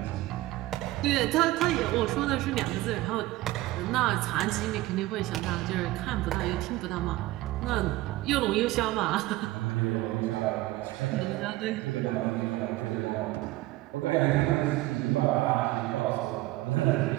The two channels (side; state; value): left; quieter; 17.9 dB